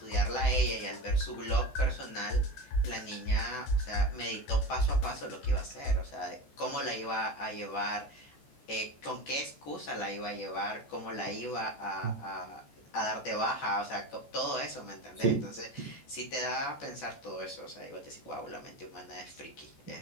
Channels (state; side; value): late; right; 14 ms